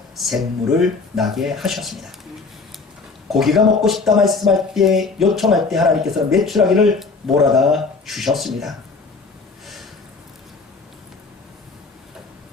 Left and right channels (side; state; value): right; quieter; 4.2 dB